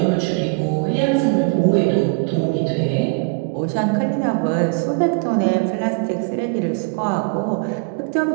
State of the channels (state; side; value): quieter; left; 30.5 dB